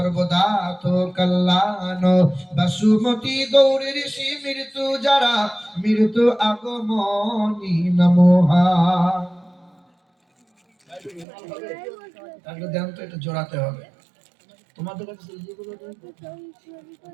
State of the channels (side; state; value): left; drops out; at 11.2 s